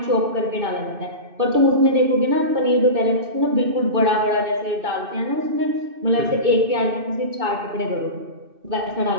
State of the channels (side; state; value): left; late; 2.6 ms